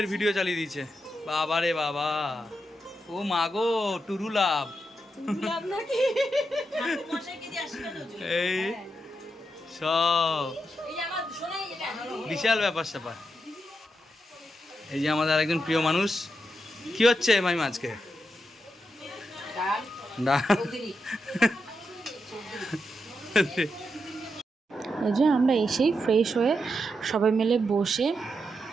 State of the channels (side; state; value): both; normal; correlation 0.85